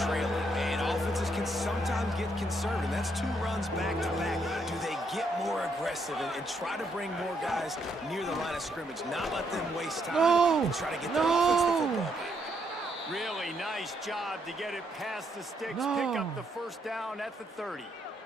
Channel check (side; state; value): both; normal; correlation 0.75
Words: trailing, and offenses can sometimes get conservative, and that's 2 runs back-to-back. Do they get more aggressive and try to bring more guys near the line of scrimmage, not let them waste time and try to get their offense the football back? Really nice job to get it past the sticks, pick up the first down at the 30.